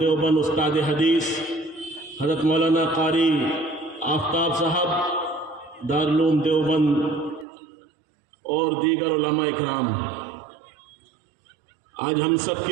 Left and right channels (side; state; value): left; drops out; at 7.5 s